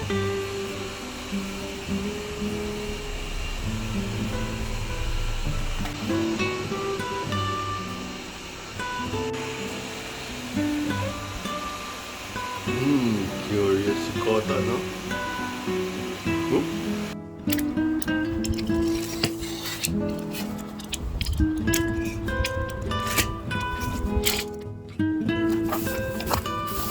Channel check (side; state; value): both; identical; correlation 1.00